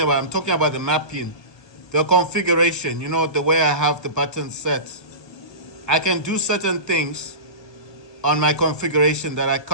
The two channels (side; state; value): right; late; 1.2 ms